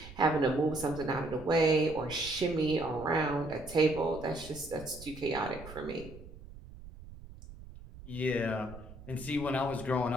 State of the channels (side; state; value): right; noise; rumble, 16 dB below the sound